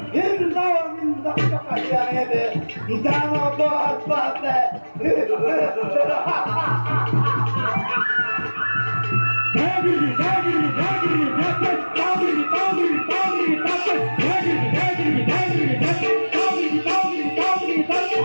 নিন্দ কাঢ়ি আনিলে দানৱ পাতে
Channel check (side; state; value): both; inverted; correlation -1.00